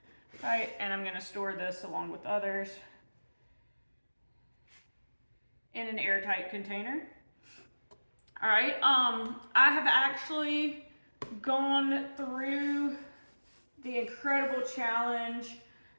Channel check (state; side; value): inverted; both; correlation -1.00